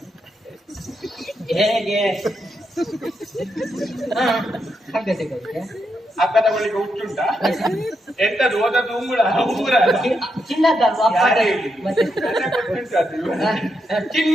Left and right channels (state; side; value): normal; both; correlation 0.82